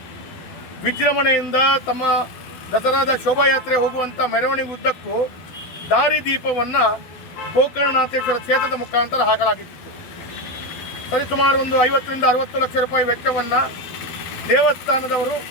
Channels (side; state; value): right; late; 12 ms